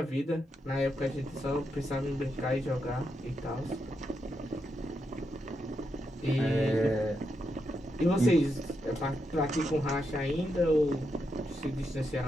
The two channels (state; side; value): normal; both; correlation 0.83